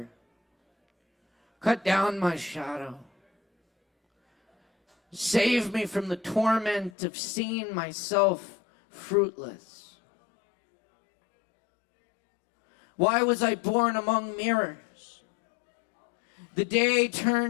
cut down my shadow. Save me from the torment of seeing myself fruitless. Why was I born among mirrors? The day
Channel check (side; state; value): right; drops out; at 6.9 s